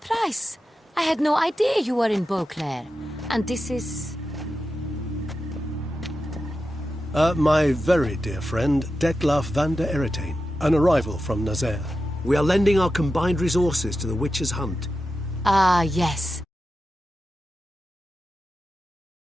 I had no idea you were in Beauclair. And this is... My very dear friend, Detlaf van der Eretain, an arrival from Nazaire. We are lending our combined resources to the Witch's Hunt. Ah, yes.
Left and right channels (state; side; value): normal; both; correlation 0.91